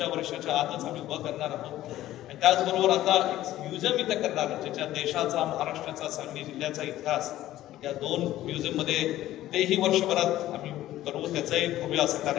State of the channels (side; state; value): right; quieter; 14.3 dB